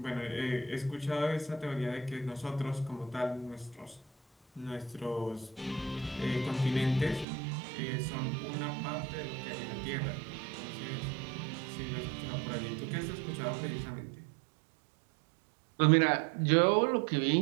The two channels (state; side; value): drops out; left; at 7.2 s